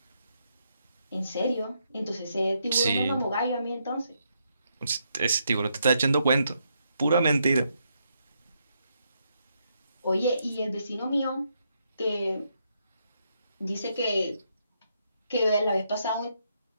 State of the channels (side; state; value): both; inverted; correlation -0.78